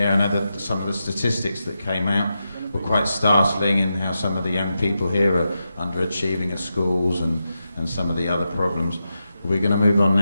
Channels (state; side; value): inverted; both; correlation -0.88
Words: I know that some of the statistics that came out were quite startling in how some of the young people here are underachieving at schools and some of the other problems. We're going to move on